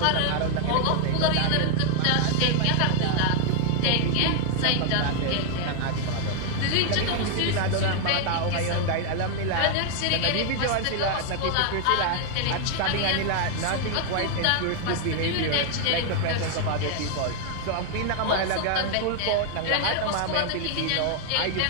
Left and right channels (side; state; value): both; different; correlation 0.00